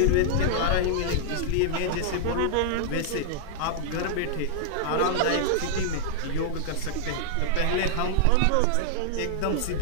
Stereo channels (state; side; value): different; both; correlation -0.01